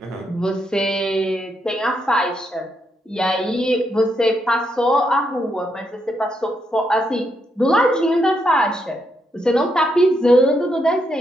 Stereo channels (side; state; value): both; normal; correlation 0.79